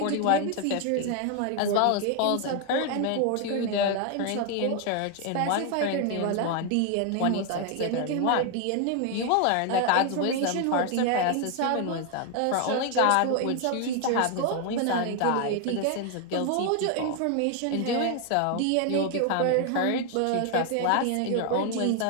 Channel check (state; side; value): different; both; correlation 0.01